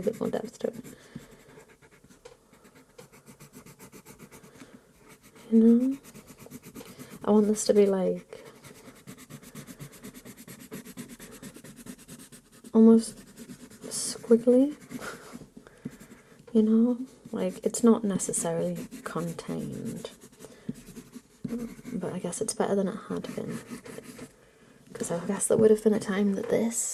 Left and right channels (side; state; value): both; identical; correlation 1.00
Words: bit more depth to it. You know? I want this to be like almost squiggly, you know? Like, it's not necessarily contained, but I guess it's better than it had been. Because I guess there would have been a time that